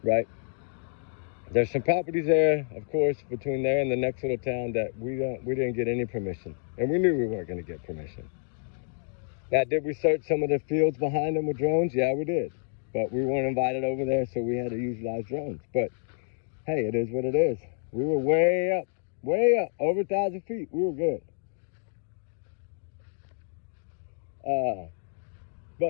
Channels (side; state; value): right; silent; 57 dB below the other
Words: right? There's some properties there, of course, between there and the next little town that we didn't get any permission, and we knew we weren't going to get permission. Now, did we search some of the fields behind them with drones? Yeah, we did, but we weren't invited over there, so we had to utilize drones. But hey, it is what it is. We were way up, over 1,000 feet. We were good.